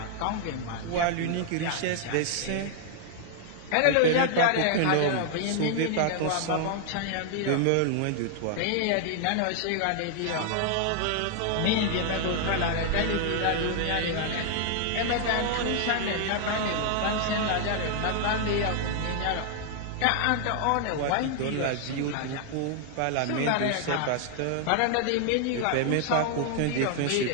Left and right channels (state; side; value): different; both; correlation 0.00